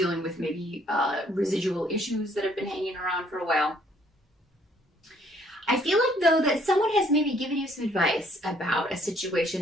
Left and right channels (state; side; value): normal; both; correlation 0.63